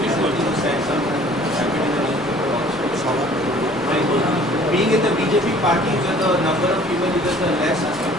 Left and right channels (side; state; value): left; noise; rumble, 22 dB below the sound